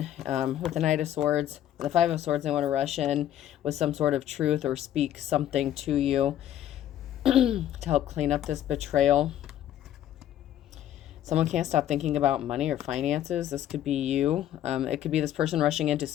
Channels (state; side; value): quieter; right; 11.7 dB